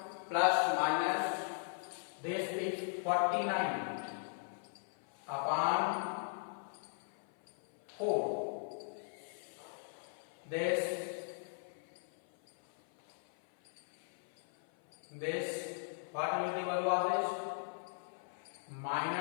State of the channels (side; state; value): right; silent; 52 dB below the other